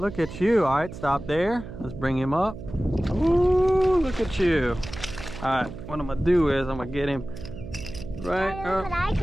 at you. All right, stop there. Let's bring him up. Ooh, look at you. All right, what I'm gonna do is I'm gonna get him right Look what I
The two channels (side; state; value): right; noise; hum, 12 dB below the sound